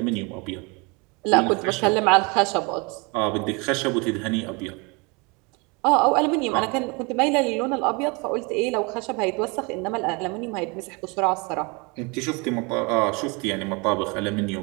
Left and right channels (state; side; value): quieter; left; 29.2 dB